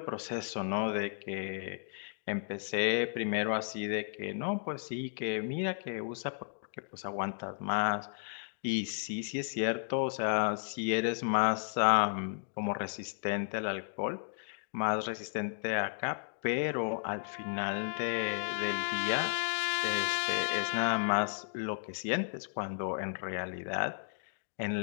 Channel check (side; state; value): right; silent; digital silence